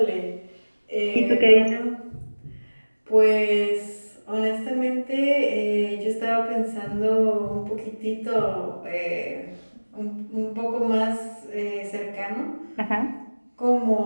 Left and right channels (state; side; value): inverted; both; correlation -1.00